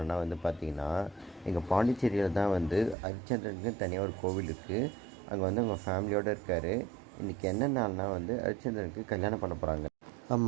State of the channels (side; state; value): left; drops out; at 3.0 s